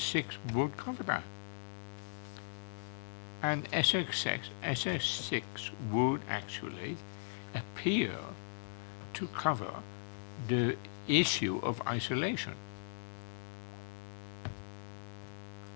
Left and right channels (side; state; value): right; silent; digital silence